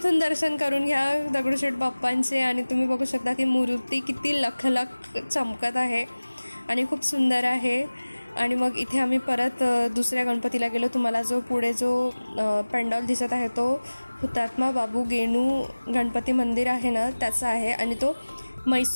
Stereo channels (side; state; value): both; inverted; correlation -1.00